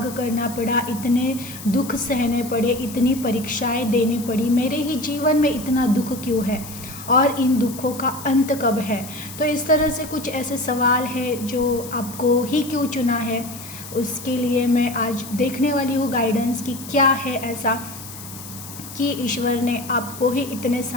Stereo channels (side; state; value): left; noise; hiss, 13 dB below the sound